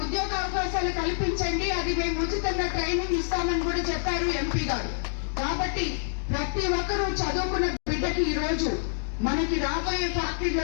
ఉద్యోగ అవకాశాలు కల్పించండి, అది మేము ఉచితంగా ట్రైనింగ్ ఇస్తామని కూడా చెప్పారు ఎంపీ గారు. కాబట్టి ప్రతి ఒక్కరూ చదువుకున్న బిడ్డకి ఈ రోజు మనకి రాబోయే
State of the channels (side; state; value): right; silent; digital silence